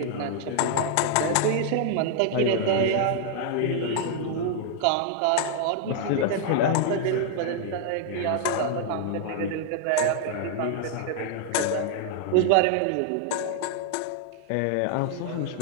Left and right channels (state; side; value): different; both; correlation 0.00